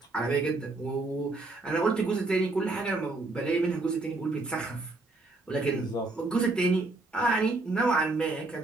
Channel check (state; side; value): quieter; left; 3.2 dB